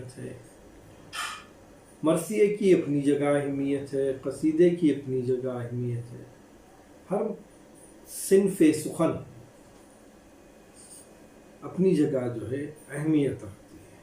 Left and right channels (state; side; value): identical; both; correlation 1.00